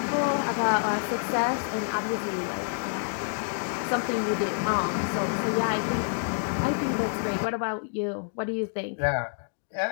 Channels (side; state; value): right; silent; digital silence